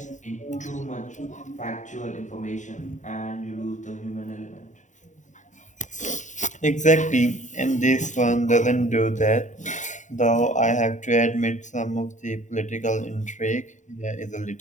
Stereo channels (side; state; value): right; late; 0.36 ms